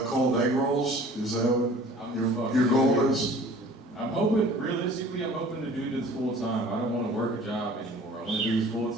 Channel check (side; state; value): both; normal; correlation 0.48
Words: cold egg rolls? Is that what your goal is? I'm hoping, realistically, I'm hoping to do this full time. I don't want to work a job anymore. I want to do this full